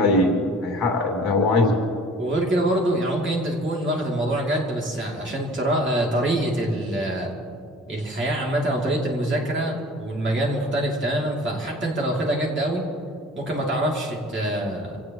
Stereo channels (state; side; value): normal; both; correlation 0.46